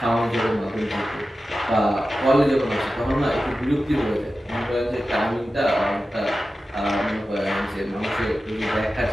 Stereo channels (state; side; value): normal; both; correlation 0.93